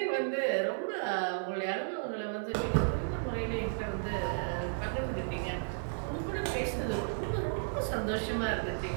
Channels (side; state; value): left; silent; digital silence